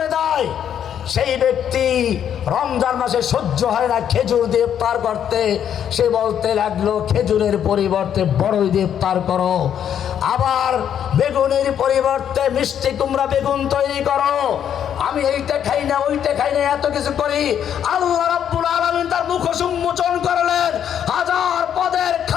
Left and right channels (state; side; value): quieter; right; 9.2 dB